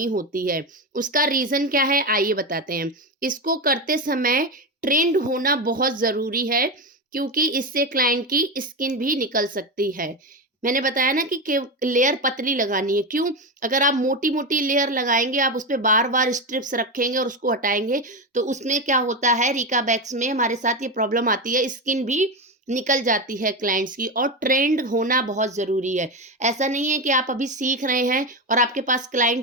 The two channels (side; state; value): both; normal; correlation 0.15